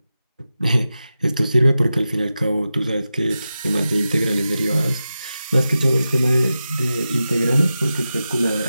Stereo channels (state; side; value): inverted; both; correlation -0.92